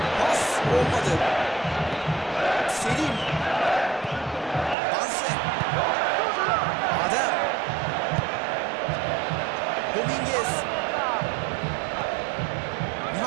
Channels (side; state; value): left; drops out; at 4.8 s